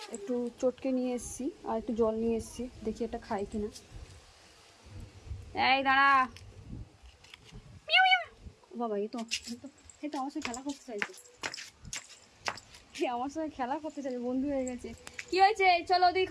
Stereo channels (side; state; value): both; identical; correlation 1.00